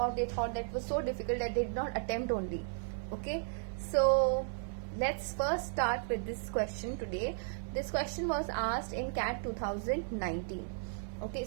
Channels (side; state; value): left; silent; digital silence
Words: they thought that was so difficult that they did not attempt only. Okay, so let's first start with this question today. This question was asked in CAT 2019. Okay,